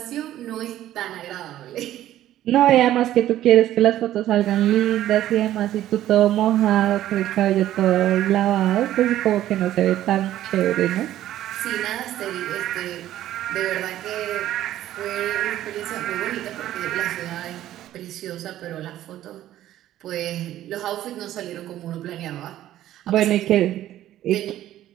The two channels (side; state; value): left; quieter; 13.1 dB